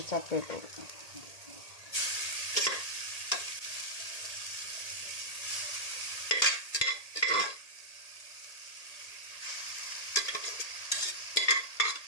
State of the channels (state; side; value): late; right; 1.8 ms